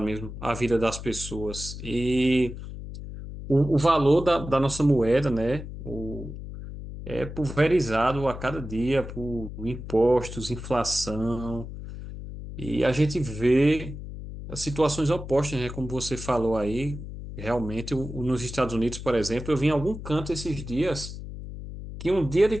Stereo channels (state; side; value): noise; left; hum, 10 dB below the sound